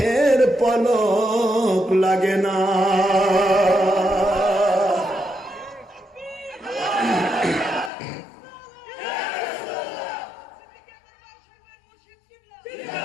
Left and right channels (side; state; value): right; drops out; at 7.9 s